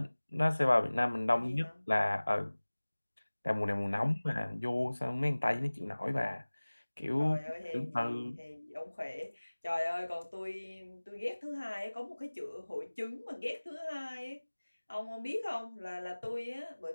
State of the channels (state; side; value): inverted; both; correlation -1.00